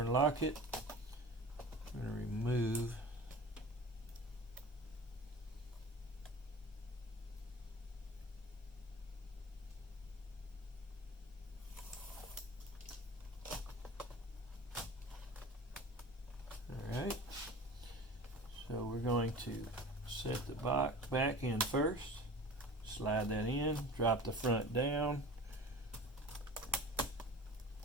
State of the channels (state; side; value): normal; both; correlation 0.38